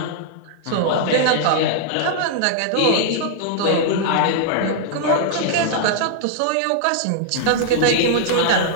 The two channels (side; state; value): both; different; correlation -0.01